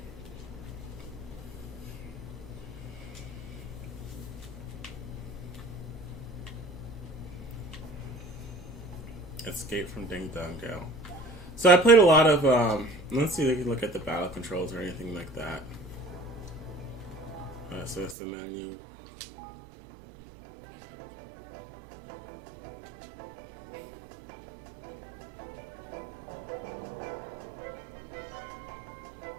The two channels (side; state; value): left; drops out; at 18.2 s